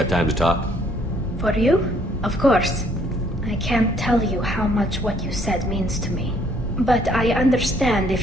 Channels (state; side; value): normal; both; correlation 0.64